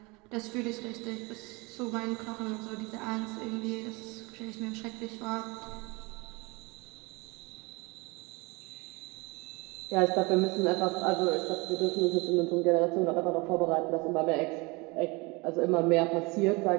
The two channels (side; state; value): left; quieter; 26.5 dB